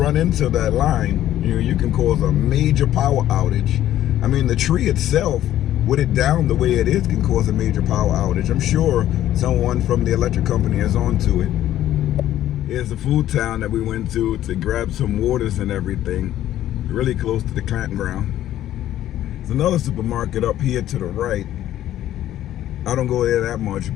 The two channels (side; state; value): right; quieter; 12.7 dB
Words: into that line, you can cause a major power outage. I mean, the tree itself, with it down the way it is, can cause a major power outage. I'm sure someone from the electric company is onto it. Here's the food town that we went to grab some waters and everything, really close to the campground. There's another supermarket up here to the right. I don't go there that much,